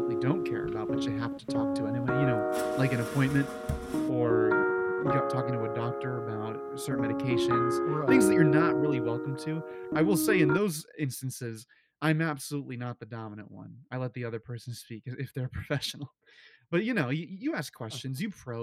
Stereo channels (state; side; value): identical; both; correlation 1.00